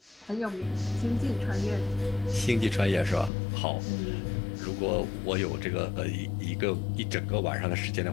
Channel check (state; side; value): drops out; right; at 3.3 s